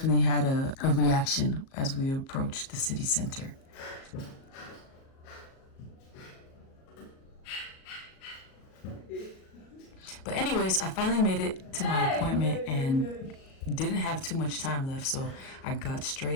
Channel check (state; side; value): late; right; 37 ms